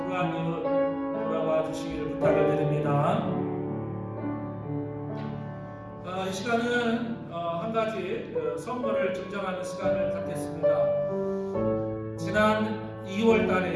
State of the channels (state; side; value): identical; both; correlation 1.00